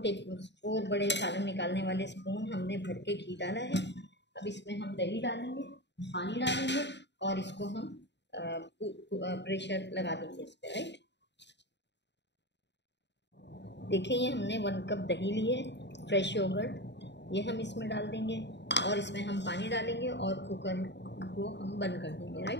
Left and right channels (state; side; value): late; right; 0.51 ms